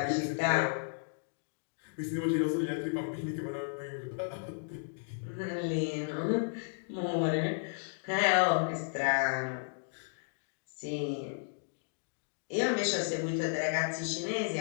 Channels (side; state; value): right; silent; digital silence